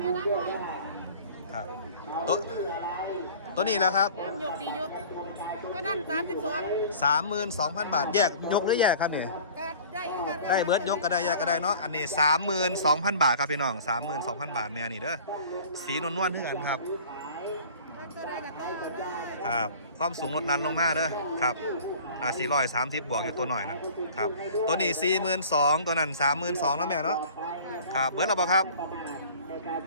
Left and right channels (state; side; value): inverted; both; correlation -0.45